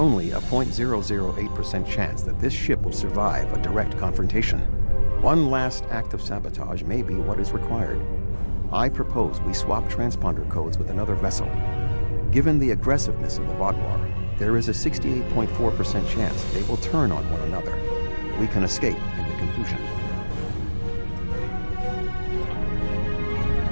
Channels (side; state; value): both; inverted; correlation -1.00